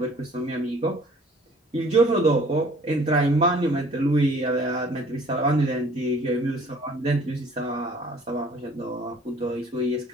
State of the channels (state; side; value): normal; both; correlation 0.54